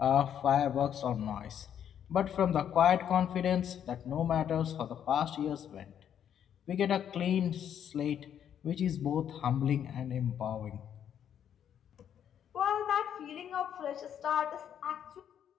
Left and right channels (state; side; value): quieter; right; 9.3 dB